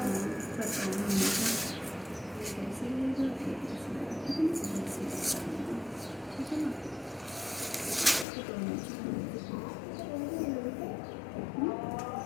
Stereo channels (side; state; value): right; drops out; at 8.2 s